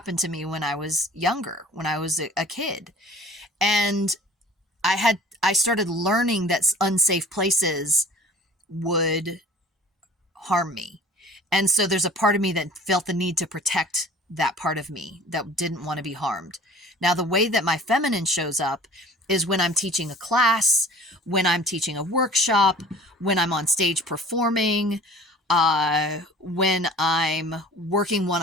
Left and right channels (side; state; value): both; normal; correlation 0.47